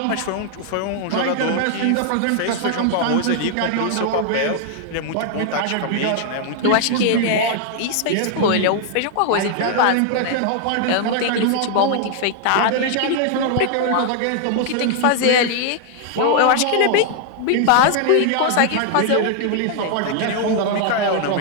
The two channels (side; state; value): both; different; correlation 0.00